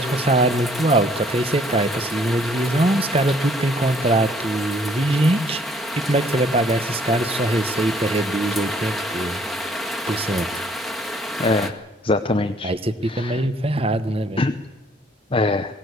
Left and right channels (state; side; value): normal; both; correlation 0.62